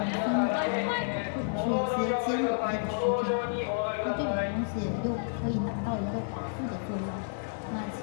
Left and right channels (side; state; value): right; silent; digital silence